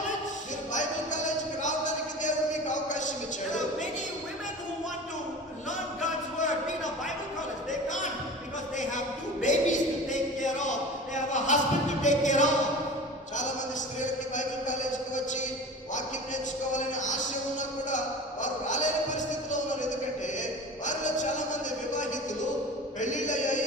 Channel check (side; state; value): both; normal; correlation 0.36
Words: మీరు బైబిల్ కాలేజీకి రావడానికి దేవుడు మీకు అవకాశం There ఇచ్చాడు. are many women who want to learn God's word, be in a Bible college. They can't because they have 2 babies to take care of. They have a husband to take care of. చాలా మంది స్త్రీలకి Bible కాలేజీకి వచ్చి వాక్యం నేర్చుకోవాలనే ఆశ ఉన్నా కూడా వారు రాలేని పరిస్థితిలో ఉన్నారు. ఎందుకంటే వారిలో చాలా మంది వివాహితులు,